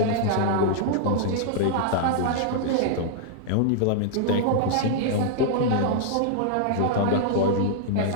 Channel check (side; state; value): both; different; correlation -0.01